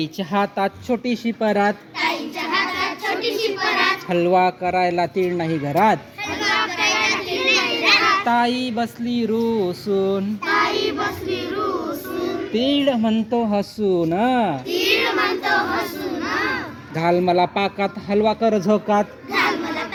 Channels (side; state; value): both; identical; correlation 1.00